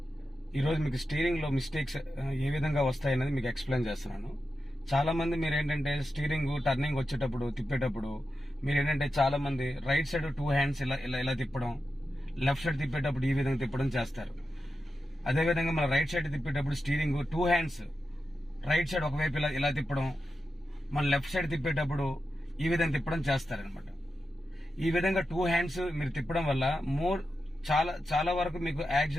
ఈరోజు మీకు స్టీరింగ్లో mistakes ఏ విధంగా వస్తాయనేది మీకు ఎక్స్ప్లెయిన్ చేస్తున్నాను. చాలామంది మీరు ఏంటంటే స్టీరింగ్ టర్నింగ్ వచ్చేటప్పుడు తిప్పేటప్పుడు మీరు ఏంటంటే చాలామంది రైట్ సైడ్ 2 హ్యాండ్స్ ఇలా ఇలా ఇలా తిప్పడం, లెఫ్ట్ సైడ్ తిప్పేటప్పుడు ఈ విధంగా తిప్పడం చేస్తారు. అదేవిధంగా మన రైట్ సైడ్ తిప్పేటప్పుడు స్టీరింగ్ 2 హ్యాండ్స్ రైట్ సైడ్ ఒకవైపు ఇలా ఇలా తిప్పడం, మన లెఫ్ట్ సైడ్ తిప్పేటప్పుడు ఈ విధంగా తిప్పడం చేస్తారనమాట. ఈ విధంగా 2 హ్యాండ్స్ మీరు తిప్పడం వల్ల చాలా వరకు మీకు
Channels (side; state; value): both; normal; correlation 0.90